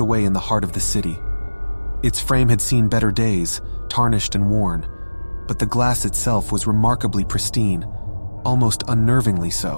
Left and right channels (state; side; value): inverted; both; correlation -1.00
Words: away in the heart of the city. Its frame had seen better days, tarnished and worn, but the glass itself was remarkably pristine, almost unnervingly